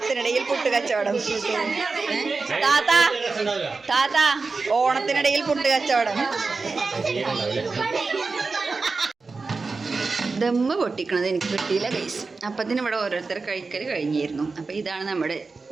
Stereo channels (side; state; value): left; quieter; 4.1 dB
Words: പുട്ട് കച്ചവടം. താത്ത ഓണത്തിനിടയിൽ പുട്ട് കച്ചവടം. ദമ്മ് പൊട്ടിക്കണത് എനിക്ക് കിട്ടിയില്ല ഗൈസ്. അപ്പത്തിന് ഇവിടെ ഓരോരുത്തർ കഴിക്കൽ കഴിഞ്ഞിരുന്നു. അപ്പോൾ ഇതാണ് നമ്മുടെ